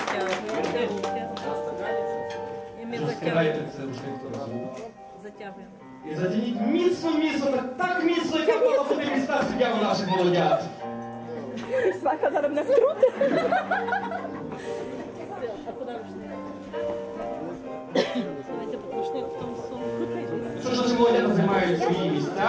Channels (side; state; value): both; identical; correlation 1.00